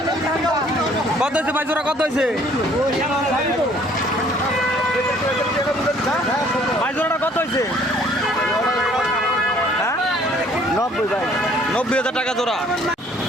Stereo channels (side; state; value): both; normal; correlation 0.59